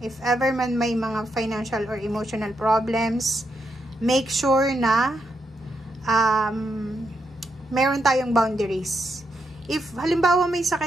ever man may mga financial or emotional problems, make sure na meron tayong boundaries. If halimbawa may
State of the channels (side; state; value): both; normal; correlation 0.82